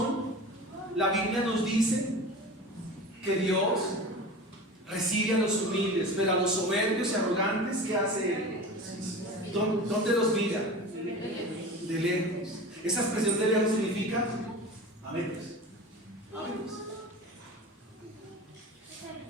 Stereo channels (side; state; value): both; normal; correlation 0.33